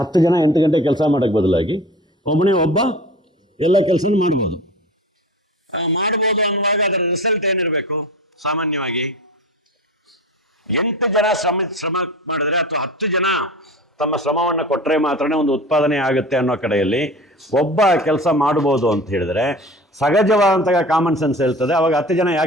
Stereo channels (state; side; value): normal; both; correlation 0.36